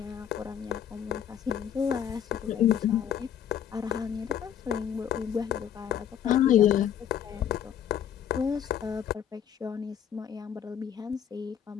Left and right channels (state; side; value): quieter; right; 9.2 dB